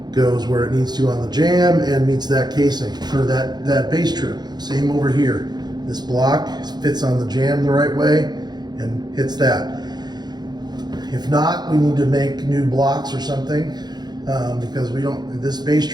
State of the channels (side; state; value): left; late; 0.20 ms